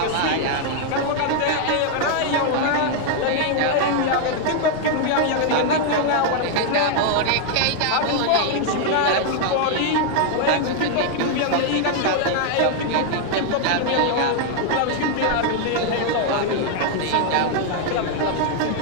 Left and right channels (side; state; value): both; different; correlation 0.00